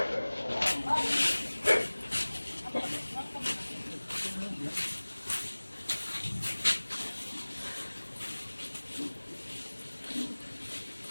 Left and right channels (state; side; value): inverted; both; correlation -1.00